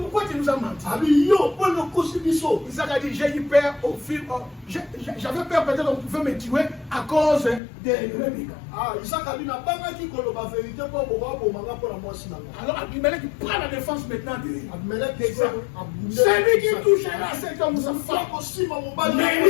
tu nous as menti? Isaac a dit, j'ai eu peur au film. J'avais peur peut-être qu'on pouvait me tuer à cause de Rebecca. Alors Abimelech prend la défense maintenant d'Isaac. Celui qui touchera cet homme, sa femme,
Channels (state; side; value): drops out; right; at 7.6 s